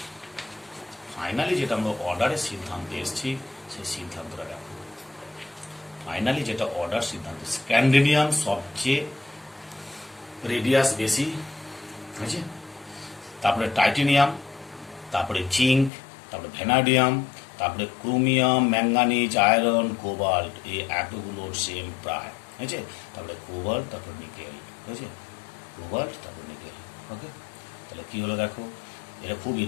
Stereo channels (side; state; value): right; drops out; at 15.9 s